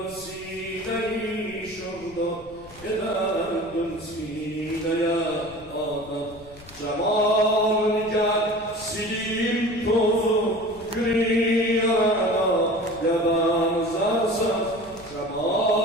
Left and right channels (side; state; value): left; noise; rumble, 21 dB below the sound